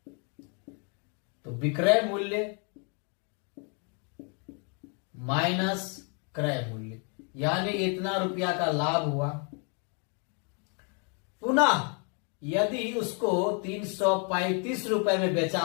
तो विक्रय मूल्य माइनस क्रय मूल्य, यानी इतना रुपया का लाभ हुआ। पुनः यदि उसको 335 रुपए में बेचा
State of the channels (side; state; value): right; quieter; 37.8 dB